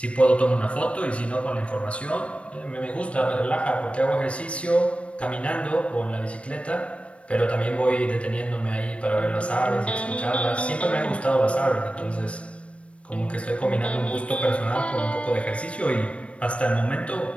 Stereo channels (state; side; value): late; right; 0.061 ms